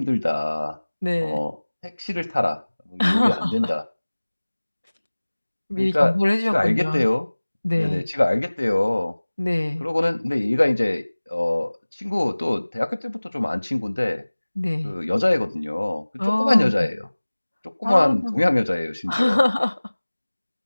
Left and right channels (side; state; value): both; inverted; correlation -1.00